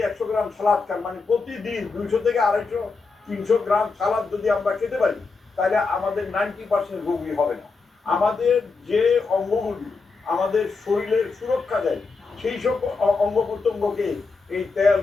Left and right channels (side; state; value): right; quieter; 4.3 dB